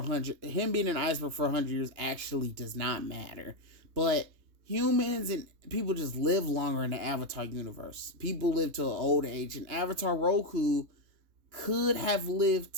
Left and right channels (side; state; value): left; late; 3.2 ms